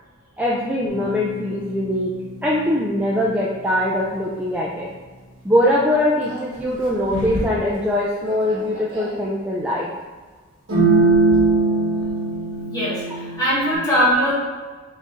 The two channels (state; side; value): normal; both; correlation 0.36